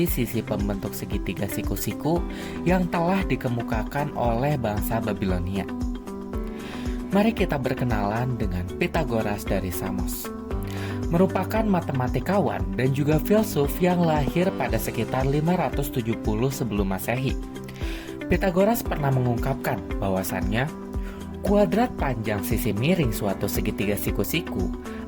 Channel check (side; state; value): both; identical; correlation 1.00